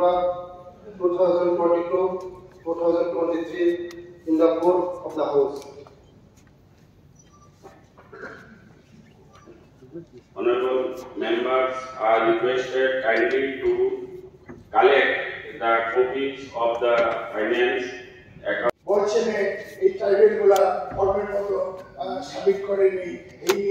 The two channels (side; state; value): both; identical; correlation 1.00